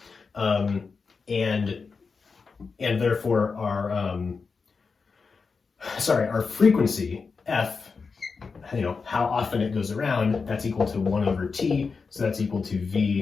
and therefore our frequency f, how often it goes around, that's equal to 1 over t, so that's equal to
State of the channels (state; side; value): quieter; right; 4.9 dB